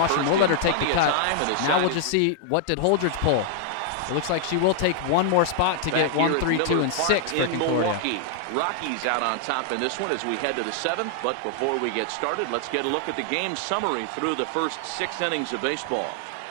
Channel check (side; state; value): both; different; correlation -0.01